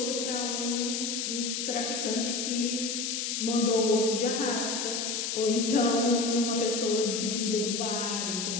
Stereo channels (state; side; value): noise; left; hiss, 2 dB below the sound